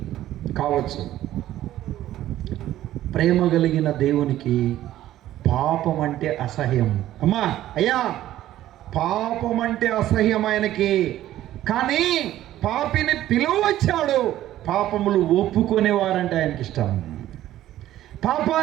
కావచ్చు. ప్రేమ కలిగిన దేవునికి పాపం అంటే అసహ్యం. అమ్మా, అయ్యా, పాపం అంటే అసహ్యం ఆయనకి. కానీ పాపిని పిలువచ్చాడు. పాపములు ఒప్పుకునేవారంటే ఆయనకి ఇష్టం.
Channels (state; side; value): quieter; left; 13.5 dB